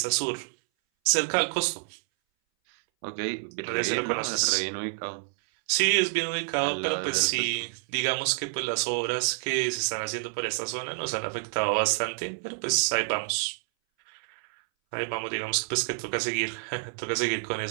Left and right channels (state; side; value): silent; left; 59 dB below the other